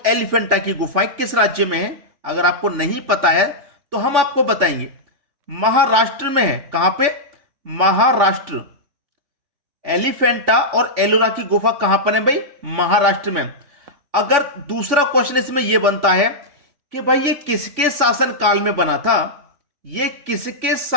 एलिफेंटा की गुफाएं किस राज्य में है? अगर आपको नहीं पता है तो हम आपको बताएंगे। महाराष्ट्र में है। कहां पे? महाराष्ट्र। एलिफेंटा और एलोरा की गुफा कहां पर है भाई? महाराष्ट्र में। अगर दूसरा क्वेश्चन इसमें यह बनता है कि भाई ये किसके शासन काल में बना था? ये किसके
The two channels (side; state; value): left; late; 3.5 ms